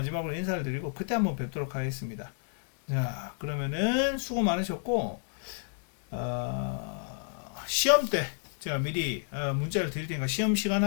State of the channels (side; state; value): right; silent; digital silence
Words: 인사를 드리고 그때 한번 뵙도록 하겠습니다. 자, 그러면은 수고 많으셨고 시험 때 제가 미리 문자를 드릴 테니까 시험